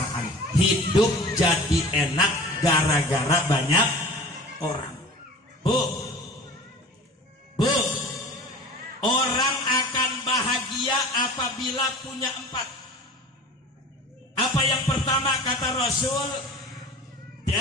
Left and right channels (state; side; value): normal; both; correlation 0.40